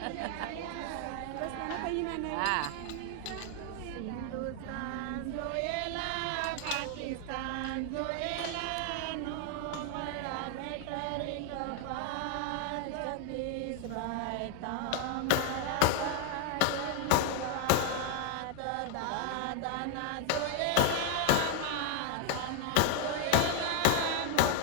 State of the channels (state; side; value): different; both; correlation 0.00